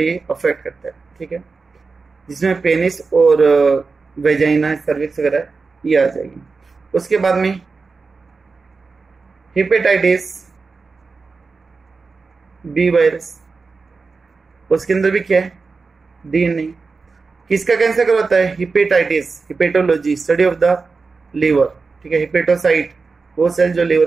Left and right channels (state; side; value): quieter; left; 4.4 dB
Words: अफेक्ट करता है, ठीक है, जिसमें पेनिस और वेजाइना सर्विक्स वगैरह ये आ जाएगी। उसके बाद में हेपेटाइटिस बी वायरस, उसके अंदर भी क्या है DNA। किसका कैंसर करवाता है, hepatitis, hepatology study of the liver, ठीक है, हेपेटोसाइट वो सेल जो